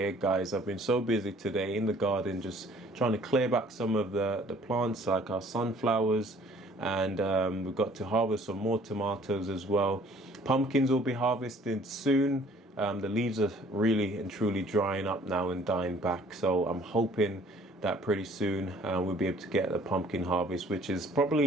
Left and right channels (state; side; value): normal; both; correlation 0.56